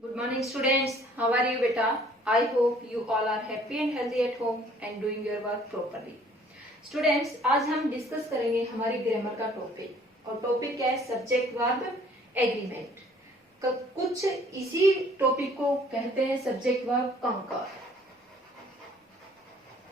morning students, how are you beta? I hope you all are happy and healthy at home and doing your work properly. Students, आज हम discuss करेंगे हमारी grammar का topic और topic क्या है? Subject verb agreement. कुछ इसी टॉपिक को कहते हैं सब्जेक्ट वर्ब कंकर,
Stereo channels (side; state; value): both; normal; correlation 0.57